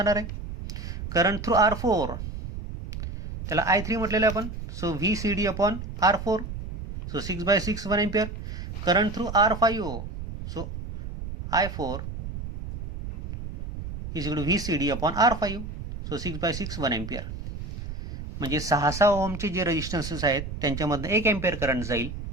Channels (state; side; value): noise; right; rumble, 8 dB below the sound